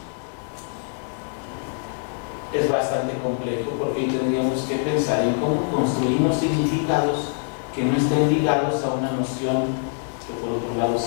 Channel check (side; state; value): right; silent; 59 dB below the other